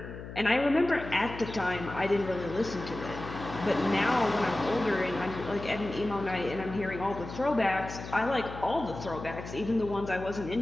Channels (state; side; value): noise; left; hum, 11 dB below the sound